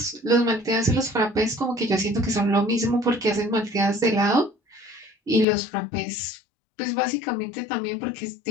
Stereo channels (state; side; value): drops out; right; at 5.5 s